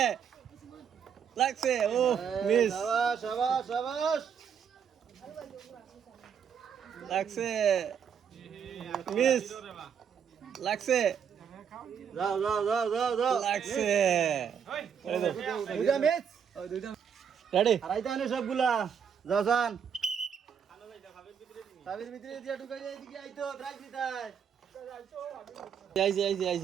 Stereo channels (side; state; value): left; quieter; 7.5 dB